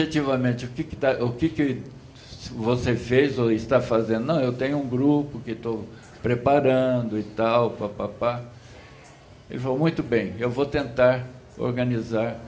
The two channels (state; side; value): identical; both; correlation 1.00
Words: o que você fez ou está fazendo? Não, eu tenho um grupo que estou preparando e tal, papapá. Ele falou, muito bem, eu vou tentar organizar